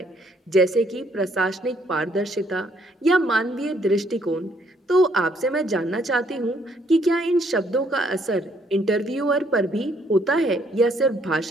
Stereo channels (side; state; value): both; normal; correlation 0.68